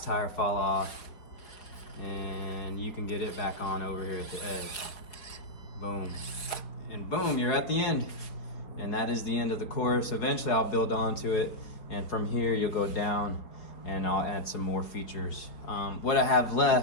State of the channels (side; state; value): right; late; 4.8 ms